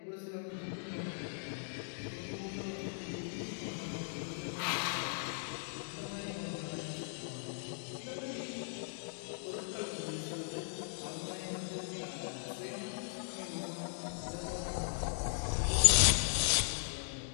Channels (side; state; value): right; silent; digital silence